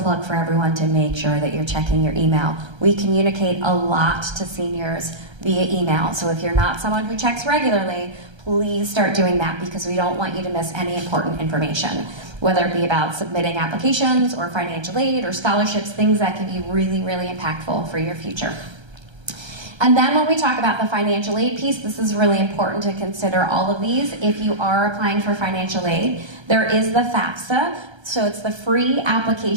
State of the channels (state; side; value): late; left; 1.3 ms